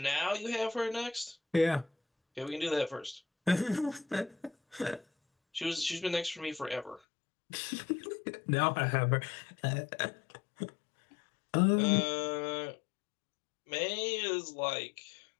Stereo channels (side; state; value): right; drops out; at 7.0 s